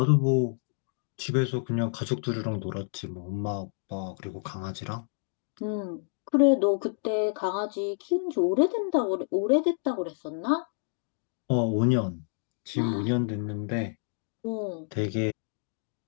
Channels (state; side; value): silent; right; digital silence